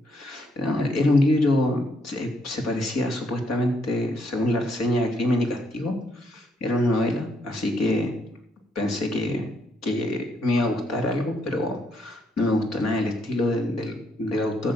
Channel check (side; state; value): both; normal; correlation 0.74